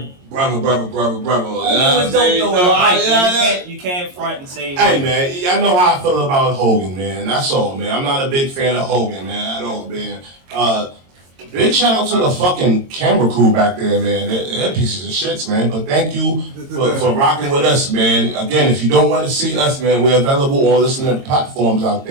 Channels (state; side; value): late; left; 22 ms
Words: brother. Hogan was dope though. You can't front and say. Hey man, I know how I feel about Hogan, man. That's all, man. I'm not a big fan of Hogan, man, at all, man. Big shout out to the fucking camera crew back there, man. They're pieces of shits, man. But thank you for rocking with us, man. Again, if you don't want to see us, man, we're available on listening platforms out